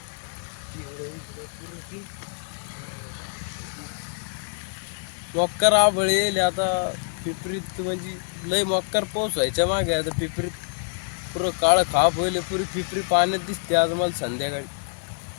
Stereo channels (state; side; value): silent; right; digital silence